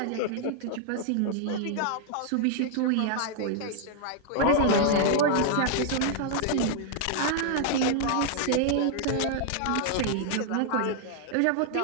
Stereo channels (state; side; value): different; both; correlation -0.01